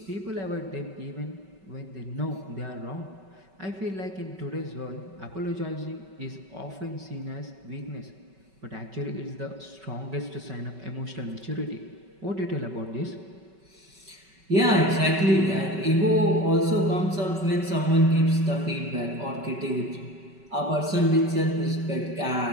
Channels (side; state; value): left; late; 5.3 ms